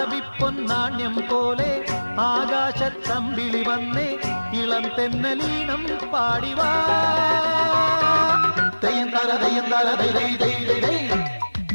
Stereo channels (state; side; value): inverted; both; correlation -1.00